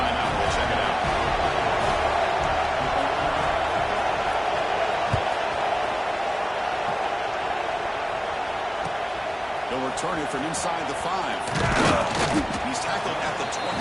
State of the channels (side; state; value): both; identical; correlation 1.00